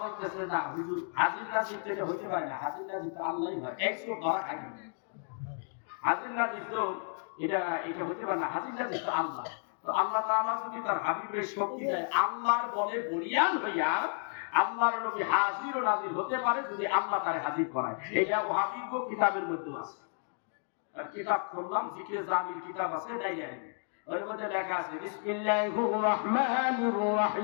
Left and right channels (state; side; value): silent; right; 55 dB below the other